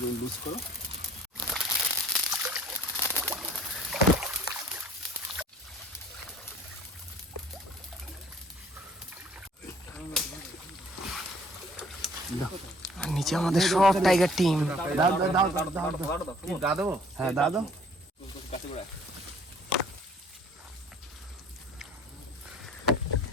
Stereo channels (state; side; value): normal; both; correlation 0.55